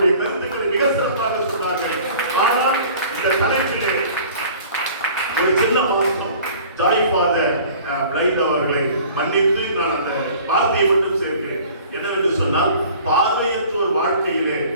கருத்துக்களை மிக சிறப்பாக சொன்னார்கள். ஆனால் இந்த தலைப்பிலே ஒரு சின்ன மாற்றம், ஜாய் ஃபாதர் பிளைண்ட் அவர்களை மன்னித்து நான் அந்த வார்த்தையை மட்டும் சேர்க்கிறேன். என்னவென்று சொன்னால், பார்வையற்றோர் வாழ்க்கையிலே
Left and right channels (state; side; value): inverted; both; correlation -0.48